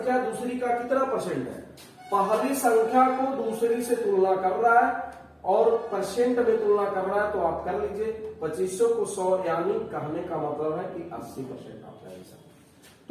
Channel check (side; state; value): both; identical; correlation 1.00